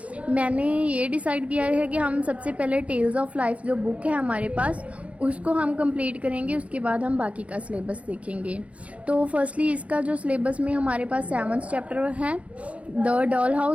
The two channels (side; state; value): left; late; 0.064 ms